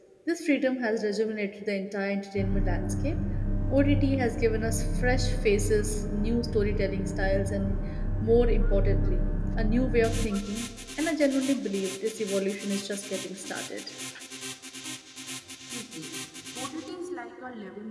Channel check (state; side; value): identical; both; correlation 1.00